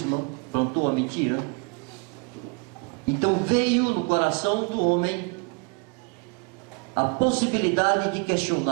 plantou uma mentira. Então veio no coração do homem a possibilidade de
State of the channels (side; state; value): left; quieter; 32.6 dB